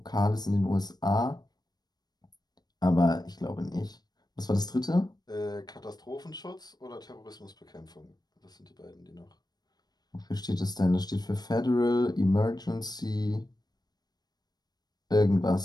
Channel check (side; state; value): right; late; 0.19 ms